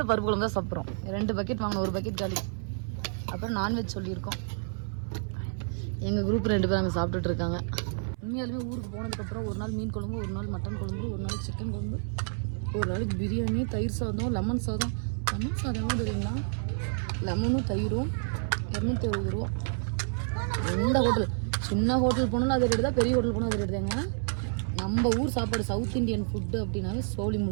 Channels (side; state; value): left; silent; 58 dB below the other